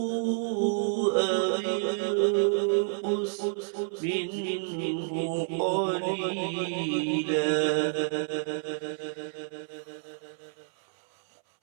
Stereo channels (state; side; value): silent; left; 58 dB below the other